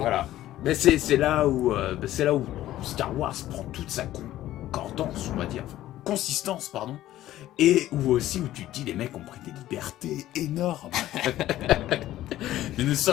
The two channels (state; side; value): quieter; right; 14.1 dB